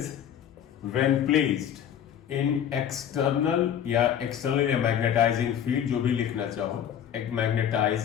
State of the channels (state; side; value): quieter; right; 9.4 dB